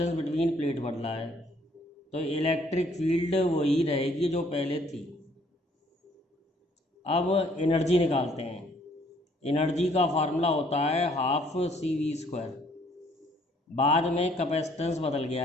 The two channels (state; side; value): normal; both; correlation 0.63